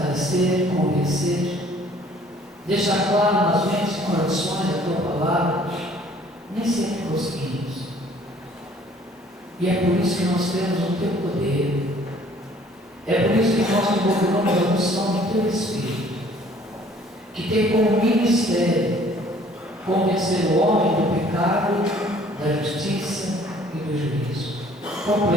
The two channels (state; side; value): normal; both; correlation 0.56